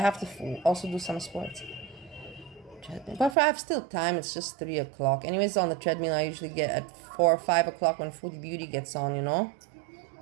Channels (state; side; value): drops out; left; at 3.4 s